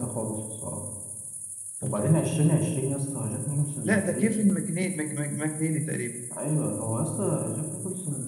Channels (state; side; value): identical; both; correlation 1.00